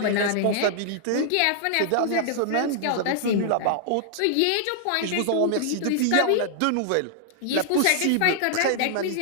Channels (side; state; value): both; different; correlation -0.01